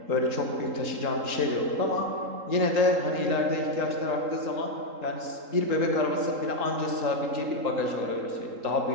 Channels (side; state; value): left; late; 3.8 ms